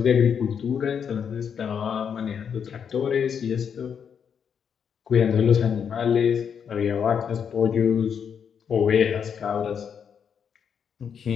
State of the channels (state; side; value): quieter; right; 7.4 dB